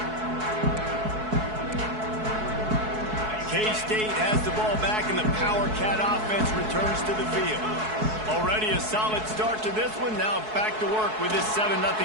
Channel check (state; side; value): late; left; 4.6 ms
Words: K-State has the ball back, and the Power Cat offense returns to the field. Already a solid start to this one. Now back to work with this 7-0